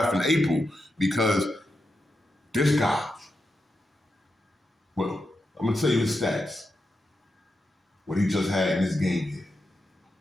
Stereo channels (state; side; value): normal; both; correlation 0.87